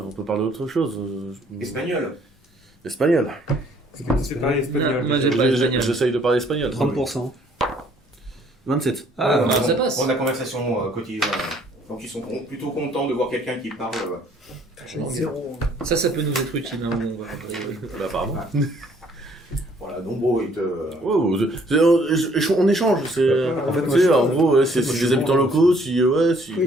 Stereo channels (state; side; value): normal; both; correlation 0.62